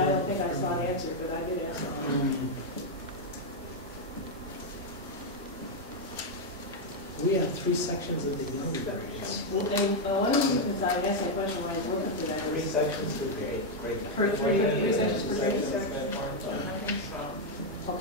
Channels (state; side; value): normal; both; correlation 0.01